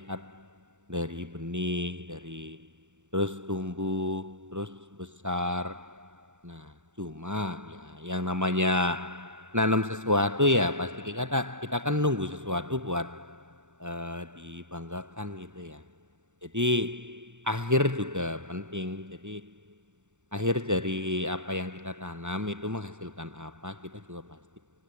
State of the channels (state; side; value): late; left; 0.84 ms